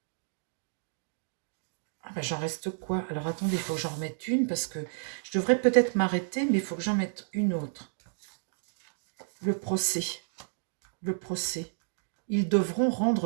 Ah bah j'en reste quoi? Alors attendez, il faut que j'en remette une parce que je devrais peut-être m'arrêter, mais il faut que j'en mette une autre. Le procès. Le procès. Ils devront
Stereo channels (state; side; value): silent; left; digital silence